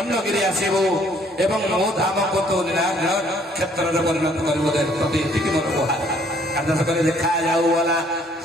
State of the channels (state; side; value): normal; both; correlation 0.62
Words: आसबू एवं मो धाम को तो क्षेत्र में परिणत कर मोर गुहार आदेश कर देखा जाऊ वाला